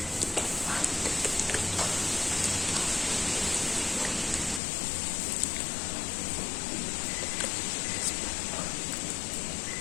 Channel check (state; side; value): drops out; right; at 4.6 s